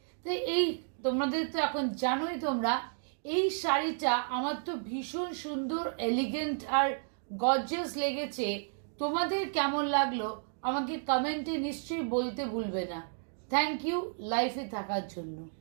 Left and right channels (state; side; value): silent; left; digital silence